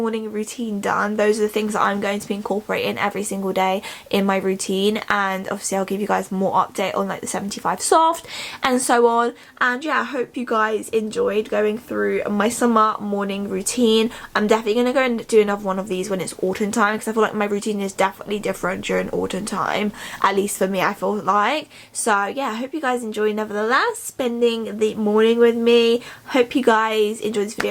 routine done. Those are the things that I'm going to be incorporating every single day in my routine, and obviously I'll give you guys more update on like the 75 soft and so on. And yeah, I hope you guys enjoyed going through my summer morning routine. I'm definitely going to go and do another one of these when it's autumn time, because I feel like my routine is definitely different during autumn time, at least for me, I feel like. So yeah, I hope you guys enjoy nevertheless spending the morning with me. Hope you guys enjoyed this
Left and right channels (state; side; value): identical; both; correlation 1.00